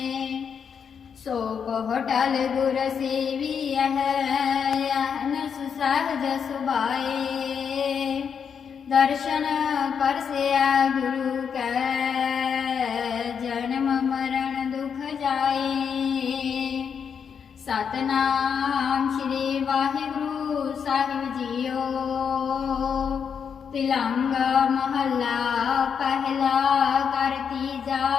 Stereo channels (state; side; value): quieter; right; 7.0 dB